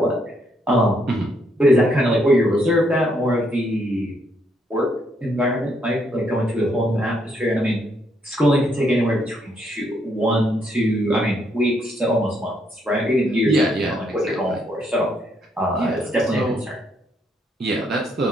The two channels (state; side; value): normal; both; correlation 0.73